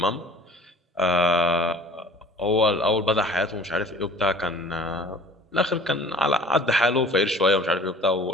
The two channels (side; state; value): both; normal; correlation 0.48